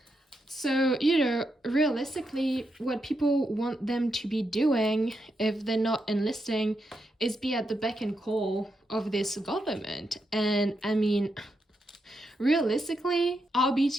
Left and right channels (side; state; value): both; normal; correlation 0.83